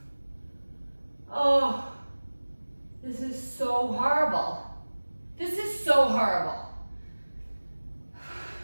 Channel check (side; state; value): both; inverted; correlation -1.00